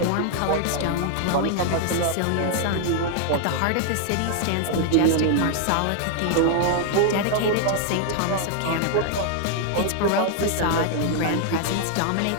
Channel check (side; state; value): both; different; correlation 0.00